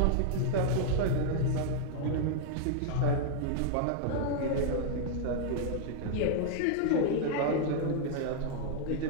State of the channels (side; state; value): both; different; correlation -0.01